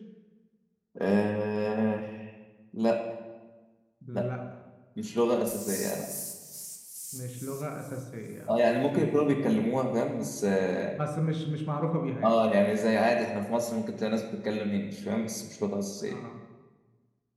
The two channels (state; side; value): identical; both; correlation 1.00